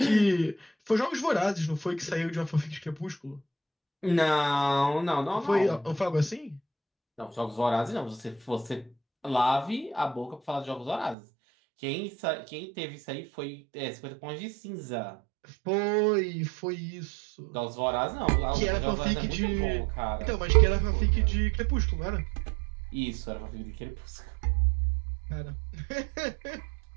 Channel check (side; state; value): left; drops out; at 11.2 s